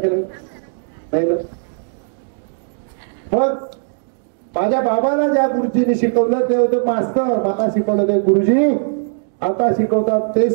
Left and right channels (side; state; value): left; silent; digital silence